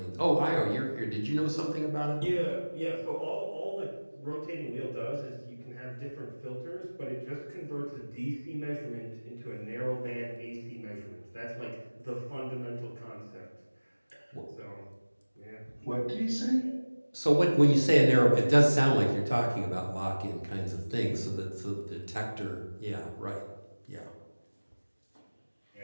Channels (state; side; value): inverted; both; correlation -1.00